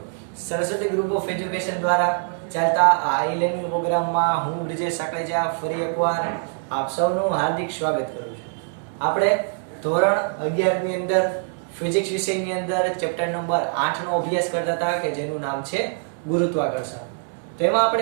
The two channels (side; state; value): left; silent; 63 dB below the other